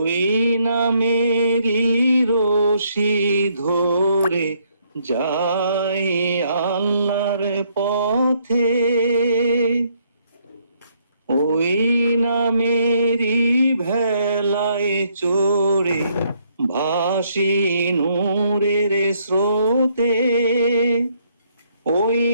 নামেরই রশি ধরে যাই আল্লাহর পথে, ওই নামেরই ভেলায় চড়ে ভাসি নূরের স্রোতে, ওই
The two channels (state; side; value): inverted; both; correlation -0.70